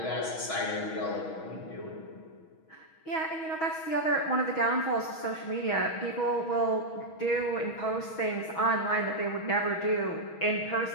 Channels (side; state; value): right; late; 6.2 ms